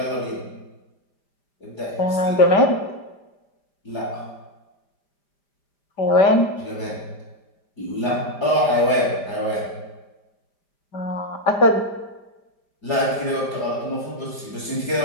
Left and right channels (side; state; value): right; late; 5.0 ms